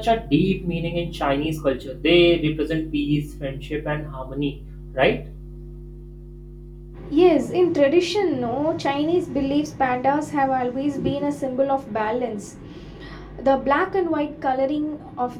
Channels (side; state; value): both; identical; correlation 1.00